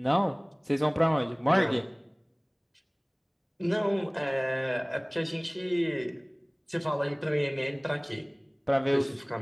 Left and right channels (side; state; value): both; identical; correlation 1.00